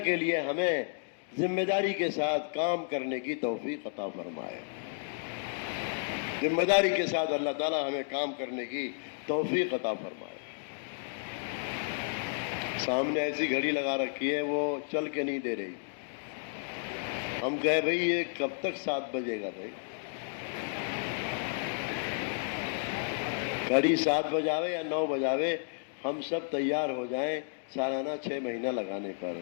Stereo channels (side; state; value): right; silent; digital silence